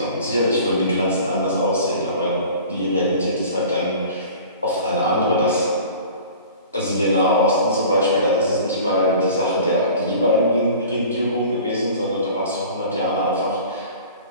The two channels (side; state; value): both; inverted; correlation -0.43